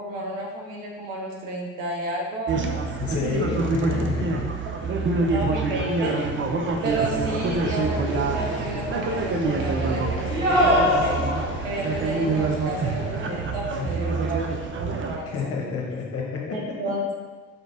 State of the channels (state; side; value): normal; both; correlation 0.33